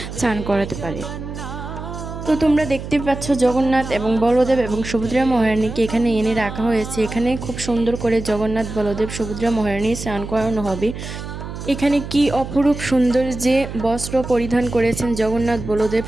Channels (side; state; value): right; noise; hum, 9 dB below the sound